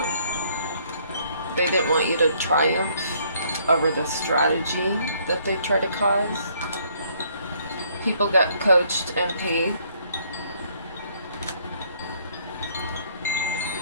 they didn't want you to triumph over the strategy that they try to cause. People got coached and paid.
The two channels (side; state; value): both; inverted; correlation -0.65